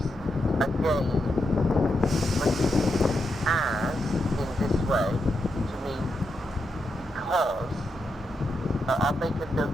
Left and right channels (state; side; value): normal; both; correlation 0.84